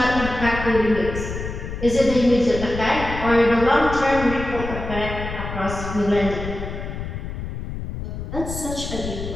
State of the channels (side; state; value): left; noise; rumble, 7 dB below the sound